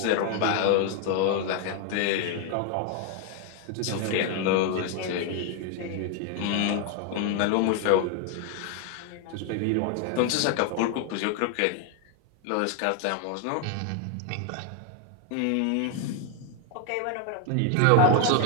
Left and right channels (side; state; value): both; different; correlation 0.00